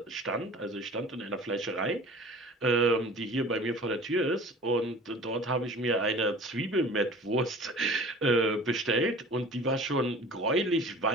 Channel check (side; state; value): both; normal; correlation 0.43